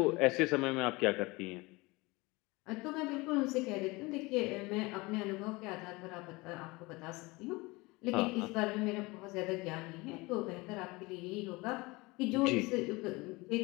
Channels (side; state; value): right; quieter; 23.5 dB